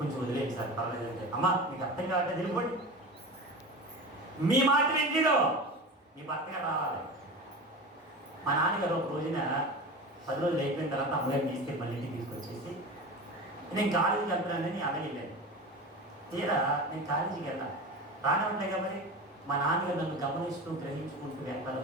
వదిలేండి సార్, పర్వాలేదు అంటే. అమ్మ మీకు అర్థం కావట్లేదు, వెళ్ళిపోండి, మీ మాట వింటాడు, మీ భర్త గారు రావాలి. మా నాన్నగారు ఒక రోజున 10 రోజులు అయిపోయిన తర్వాత అమ్మగారిని తీసుకెళ్ళి మళ్ళీ ఇంటికి తీసుకొచ్చేసి, నేను కాలేజీకి వెళ్తున్నానని అలాగే వెళ్ళాను. తీరా నేను కాలేజీకి వెళ్ళాను, రానే ఉంటాయి కాబట్టి మా నాన్నగారు నన్ను గమనిస్తూ గ్రహించుకుంటూ వెనకాల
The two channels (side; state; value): both; normal; correlation 0.29